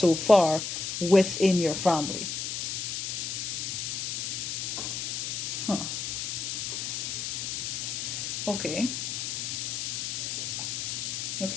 far within your family. Huh. Okay.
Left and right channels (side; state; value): left; noise; hiss, 2 dB below the sound